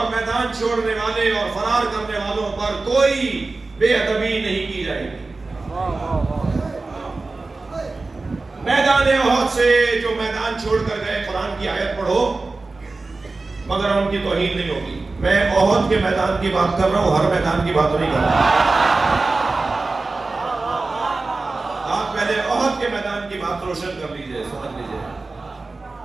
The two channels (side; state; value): left; quieter; 3.6 dB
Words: میدان چھوڑنے والے اور فرار کرنے والوں پر کوئی بے ادبی نہیں کی جائے گی. میدان احد سے جو میدان چھوڑ کر گئے, قرآن کی آیت پڑھو مگر ان کی توہین نہیں ہوگی. میں احد کے میدان کی بات کر رہا ہوں, ہر میدان کی بات نہیں کر رہا. آپ پہلے احد کے میدان کی بات روشن کر لیجئے, سمجھ لیجئے.